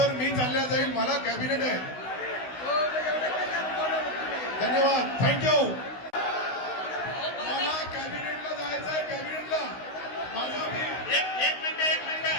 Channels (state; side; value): late; right; 16 ms